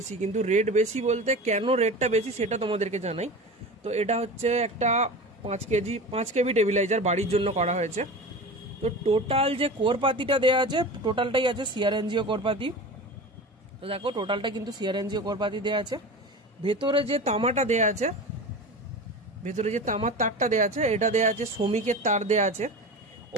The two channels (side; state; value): both; normal; correlation 0.31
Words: কিন্তু রেট বেশি বলতে কেন রেটটা বেশি সেটা তোমাদেরকে জানাই। তো এটা হচ্ছে একটা 5 কেবি টেবিলাইজার বাড়ির জন্য করা হয়েছে। তো টোটাল যে কোরপাতিটা দেওয়া আছে টোটালটাই আছে সিআরএনজিও কোরপাতি। তো দেখো টোটালটা কিন্তু সিআরএনজিও কোরপাতি দেওয়া আছে। ভেতরে যে তামাটা দেওয়া আছে, ভেতরে যে তামার তারটা দেওয়া আছে এটা দেওয়া আছে শ্রমিকের তার দেওয়া আছে।